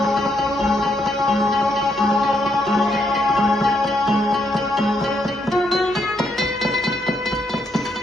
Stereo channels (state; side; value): normal; both; correlation 0.76